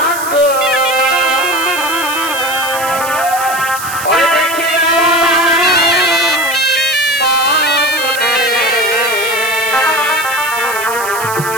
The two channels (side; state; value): right; noise; hiss, 9 dB below the sound